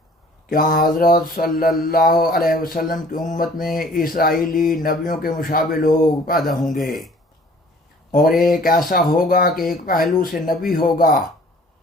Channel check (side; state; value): both; normal; correlation 0.53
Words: کہ حضرت صلی اللہ علیہ وسلم کی امت میں اسرائیلی نبیوں کے مشابہ لوگ پیدا ہوں گے، اور ایک ایسا ہوگا کہ ایک پہلو سے نبی ہوگا